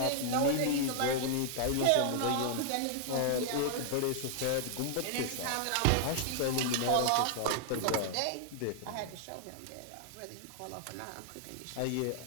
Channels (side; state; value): both; different; correlation -0.01